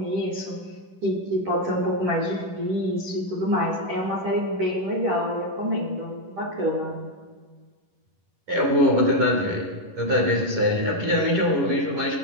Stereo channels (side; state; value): left; late; 11 ms